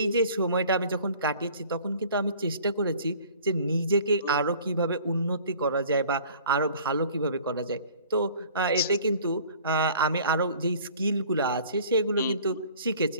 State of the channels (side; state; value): both; inverted; correlation -0.49